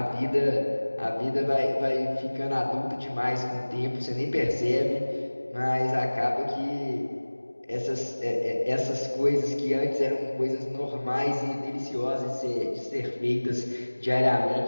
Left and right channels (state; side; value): inverted; both; correlation -1.00